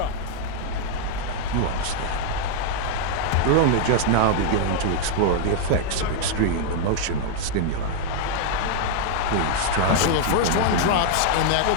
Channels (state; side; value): different; both; correlation 0.00